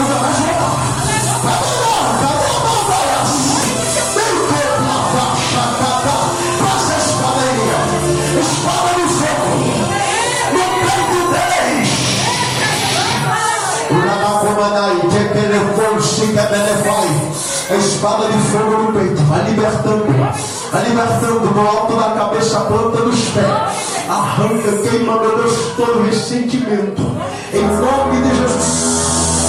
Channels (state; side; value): identical; both; correlation 1.00